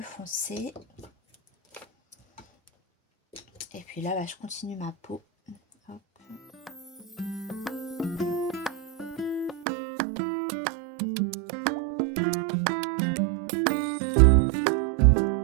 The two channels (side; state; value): left; drops out; at 9.7 s